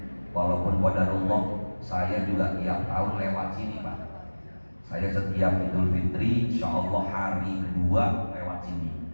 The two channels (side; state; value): both; inverted; correlation -1.00